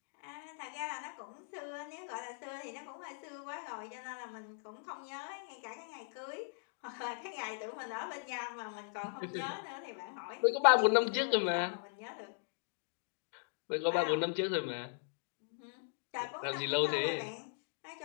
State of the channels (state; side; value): silent; right; digital silence